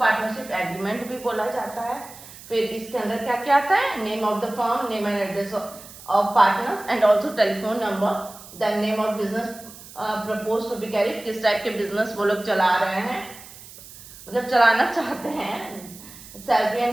एग्रीमेंट भी बोला जाता है। फिर इसके अंदर क्या क्या आता है, name of the firm, name and address of partners and also telephone number, then name of business propose to be carried, किस टाइप के बिजनेस वो लोग चला रहे हैं, मतलब चलाना चाहते हैं। Salary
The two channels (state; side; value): noise; right; hiss, 18 dB below the sound